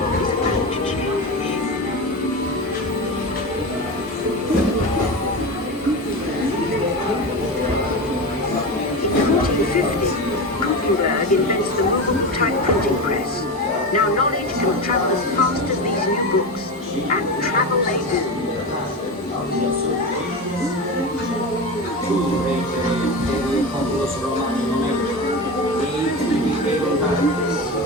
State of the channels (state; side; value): normal; both; correlation 0.23